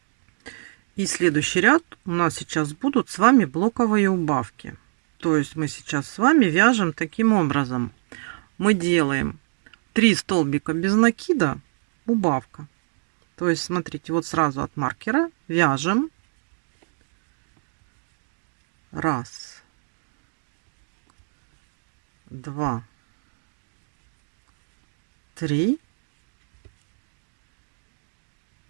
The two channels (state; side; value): silent; left; 62 dB below the other